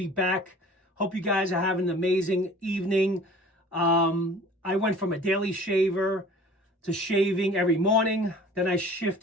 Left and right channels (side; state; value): both; normal; correlation 0.46